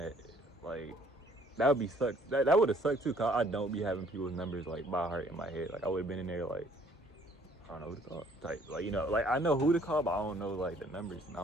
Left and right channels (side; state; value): both; normal; correlation 0.60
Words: Like that would be sucked. That would have sucked too, cause I don't be having people's numbers like by heart in my head. Like I would have been in there like, I don't know who to call type. Like like I know who to call, but I don't know like the numbers, and I